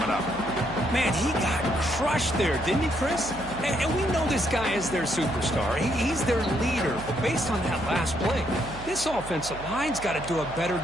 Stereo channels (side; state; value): right; noise; hum, 13 dB below the sound